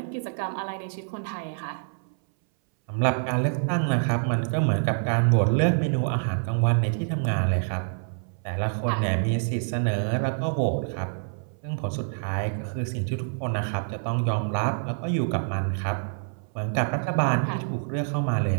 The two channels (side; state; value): left; silent; 60 dB below the other